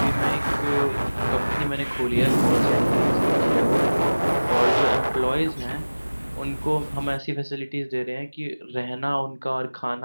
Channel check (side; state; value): both; inverted; correlation -1.00